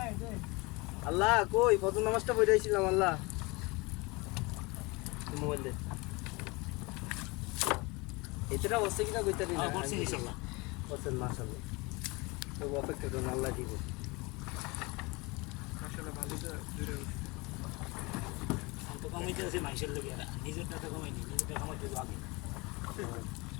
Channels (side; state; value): right; quieter; 25.7 dB